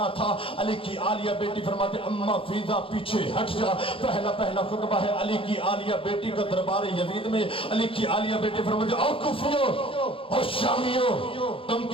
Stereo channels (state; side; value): late; right; 0.26 ms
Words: تھا۔ علی کی عالیہ بیٹی فرماتے اماں فیضا پیچھے ہٹ جا، پہلا خطبہ ہے علی کی عالیہ بیٹی کا دربار یزید میں۔ علی کی عالیہ بیٹی فرماتے او کوفیو او شامیو، تم